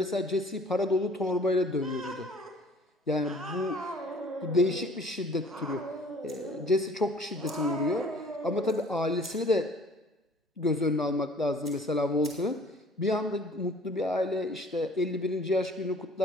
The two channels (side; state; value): both; normal; correlation 0.52